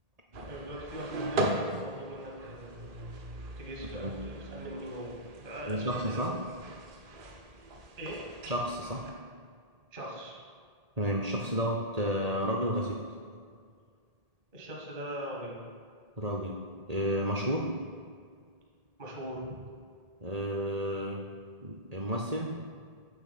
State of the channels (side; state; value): left; late; 1.8 ms